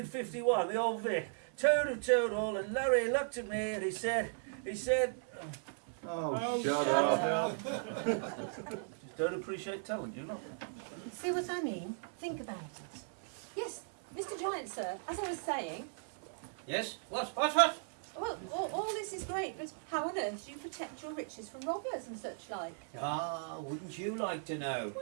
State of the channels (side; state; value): left; silent; 53 dB below the other